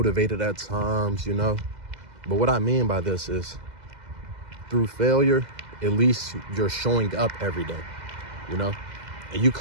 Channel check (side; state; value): left; late; 2.0 ms